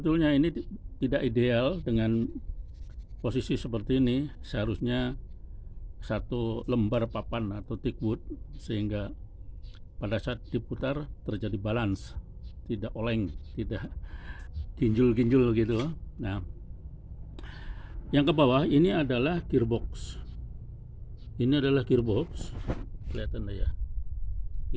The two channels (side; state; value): both; identical; correlation 1.00